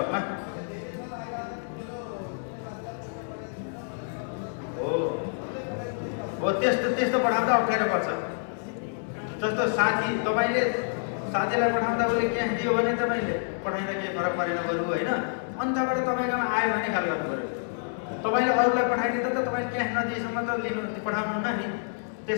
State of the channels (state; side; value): silent; right; digital silence